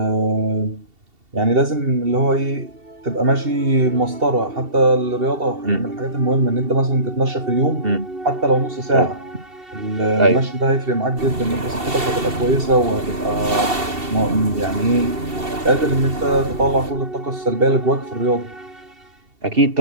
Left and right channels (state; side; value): late; left; 2.7 ms